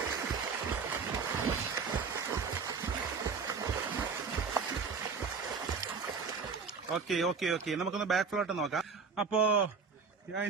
ഓക്കെ. നമുക്കൊന്ന് ബാക്ക് ഫ്ലോട്ട് നോക്കാം. അപ്പോ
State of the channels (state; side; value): quieter; left; 5.2 dB